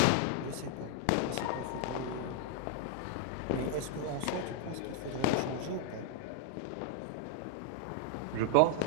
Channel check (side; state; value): both; different; correlation 0.00